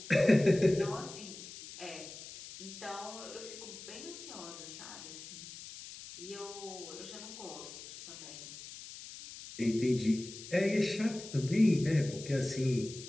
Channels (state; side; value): noise; left; hiss, 13 dB below the sound